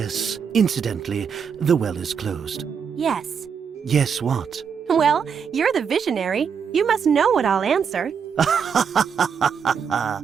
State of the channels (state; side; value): quieter; left; 6.8 dB